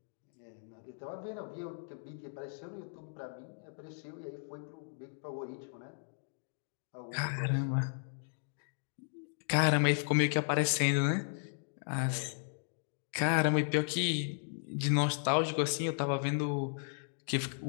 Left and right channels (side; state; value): right; silent; digital silence